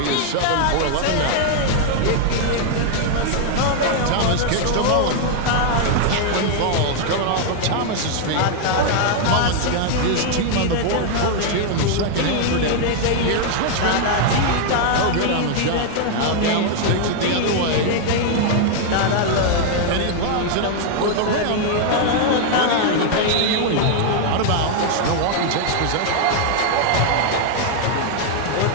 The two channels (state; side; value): different; both; correlation 0.00